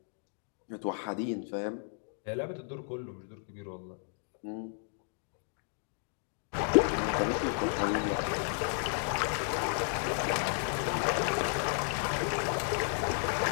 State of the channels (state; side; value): silent; right; 56 dB below the other